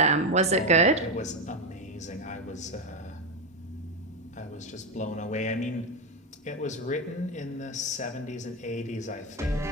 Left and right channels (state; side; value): normal; both; correlation 0.11